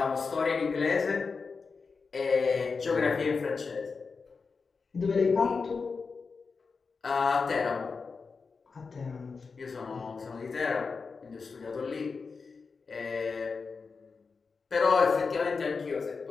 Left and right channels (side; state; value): right; quieter; 4.8 dB